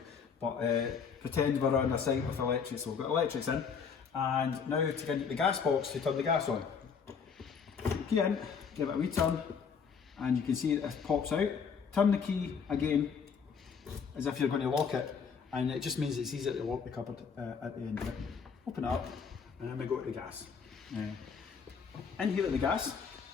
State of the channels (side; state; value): right; quieter; 6.2 dB